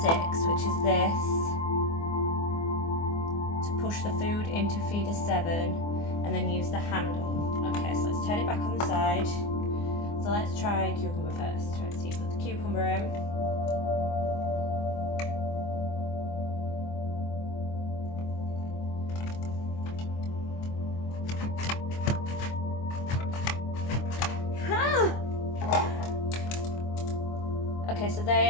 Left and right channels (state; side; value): late; right; 24 ms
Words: 6, which is this, to push the food into feeder 7, and then use the handle. Okay, so let's turn it back on the side. So let's try cucumber first. Try to see if we put the cucumber in. Okay, so